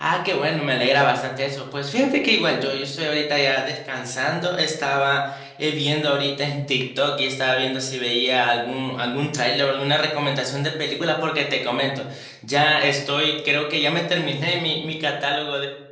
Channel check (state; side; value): identical; both; correlation 1.00